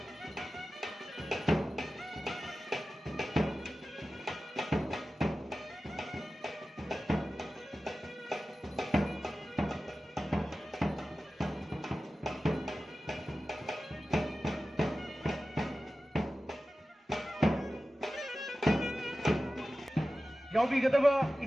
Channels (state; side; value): normal; both; correlation 0.95